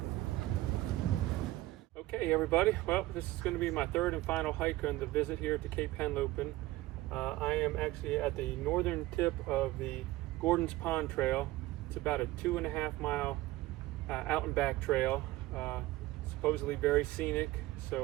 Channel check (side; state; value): left; quieter; 17.8 dB